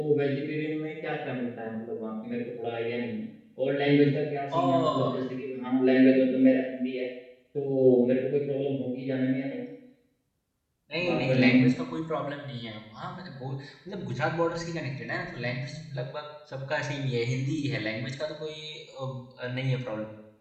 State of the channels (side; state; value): both; identical; correlation 1.00